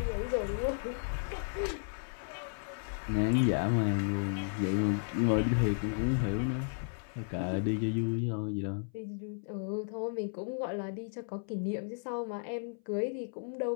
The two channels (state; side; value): silent; right; 55 dB below the other